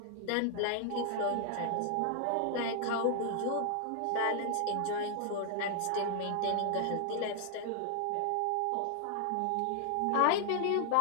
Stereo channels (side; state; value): both; different; correlation -0.01